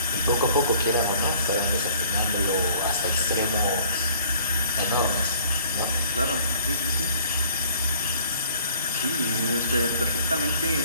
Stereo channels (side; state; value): both; inverted; correlation -0.55